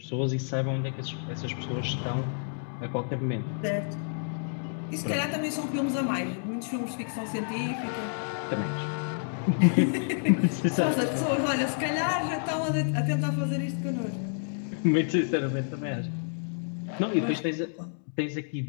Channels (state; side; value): silent; right; digital silence